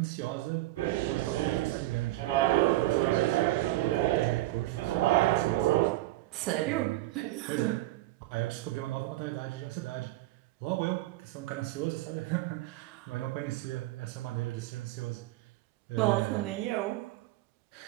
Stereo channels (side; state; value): left; quieter; 17.1 dB